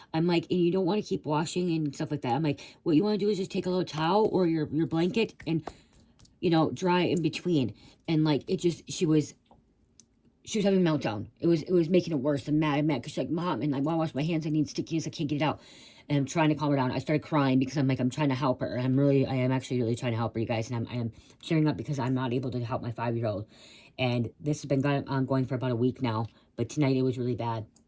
I'm like, and you don't want to keep washing and stuff like that. I'm like, what you want to do is just take a little towel or your blanket and, you know, dry in between. And like, she was having a meltdown. It was making it worse and mad because she's like, Mom, and I want to wash my hands. I need stickiness. I can't get it out. And I'm trying to calm her down. I started crying because I'm like, I'm trying to help her. I am actually really trying to help her, you guys. And I am cheering up because I'm not able to help my 5-year-old. And this has been ongoing for about a week now. But tonight it was really bad.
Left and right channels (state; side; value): identical; both; correlation 1.00